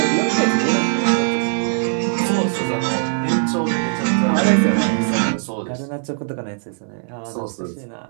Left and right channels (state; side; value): silent; left; digital silence